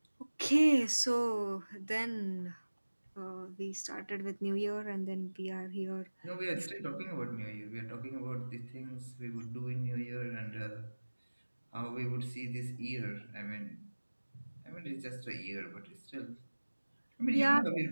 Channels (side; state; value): both; inverted; correlation -1.00